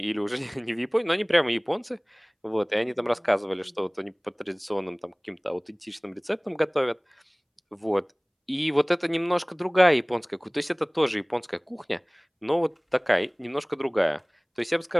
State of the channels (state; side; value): identical; both; correlation 1.00